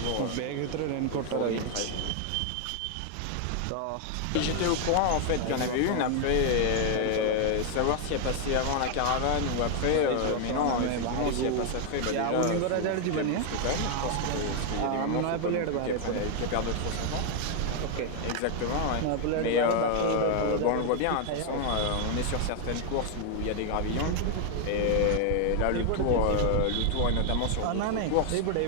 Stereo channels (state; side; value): different; both; correlation 0.00